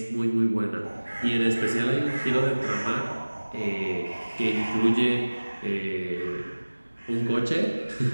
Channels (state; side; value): inverted; both; correlation -1.00